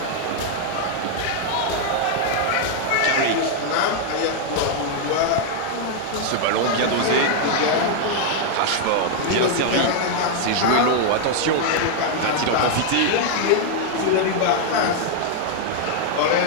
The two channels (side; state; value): both; different; correlation 0.00